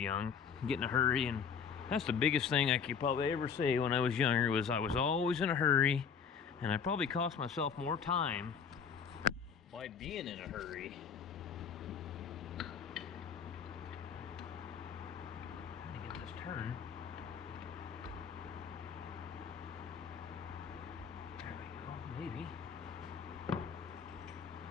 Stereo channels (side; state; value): right; quieter; 6.7 dB